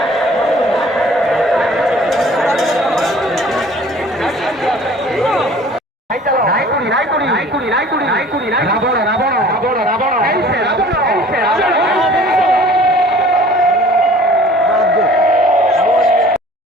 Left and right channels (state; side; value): normal; both; correlation 0.50